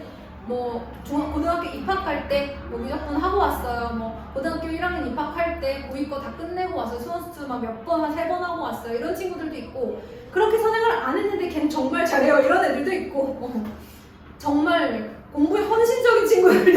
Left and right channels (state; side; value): identical; both; correlation 1.00